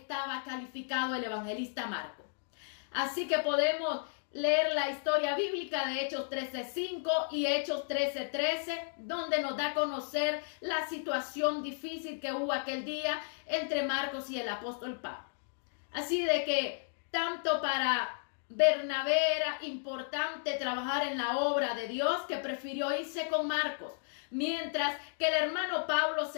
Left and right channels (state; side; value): silent; right; digital silence